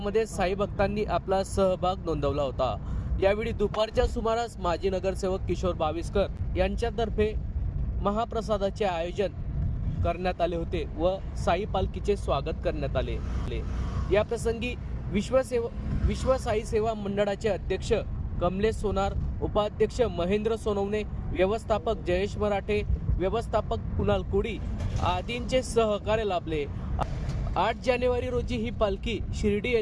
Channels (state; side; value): identical; both; correlation 1.00